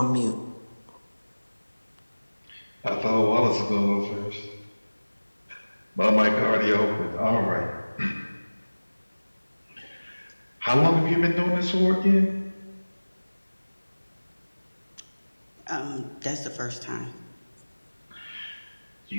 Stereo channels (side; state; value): both; inverted; correlation -1.00